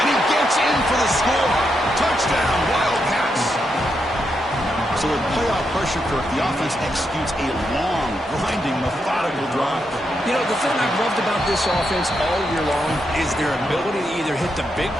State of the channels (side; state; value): both; normal; correlation 0.82